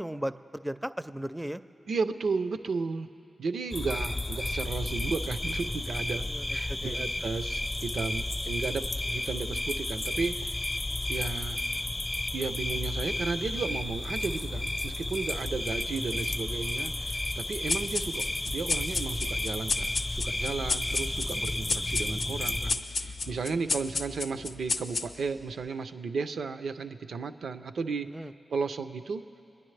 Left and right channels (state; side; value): normal; both; correlation 0.90